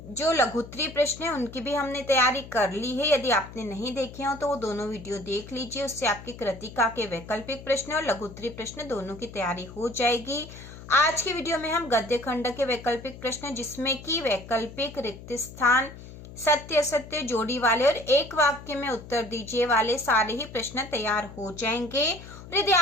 जो लघुत्तरीय प्रश्न है उनकी भी हमने तैयारी कर ली है। यदि आपने नहीं देखे हो तो वो दोनों वीडियो देख लीजिए, उससे आपकी कृतिका के वैकल्पिक प्रश्न और लघुत्तरीय प्रश्न दोनों की तैयारी हो जाएगी। आज की वीडियो में हम गद्य खंड के वैकल्पिक प्रश्न, जिसमें कि वैकल्पिक, रिक्त स्थान, सत्य असत्य, जोड़ी वाले और एक वाक्य में उत्तर दीजिए वाले सारे ही प्रश्न तैयार हो जाएंगे। और यदि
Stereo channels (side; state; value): left; noise; hum, 15 dB below the sound